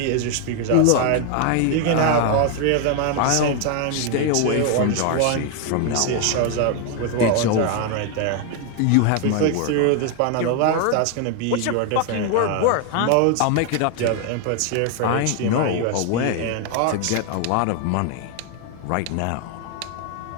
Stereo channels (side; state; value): both; different; correlation 0.01